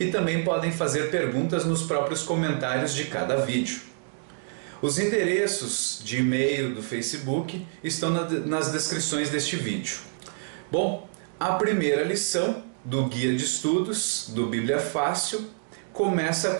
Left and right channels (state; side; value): silent; left; digital silence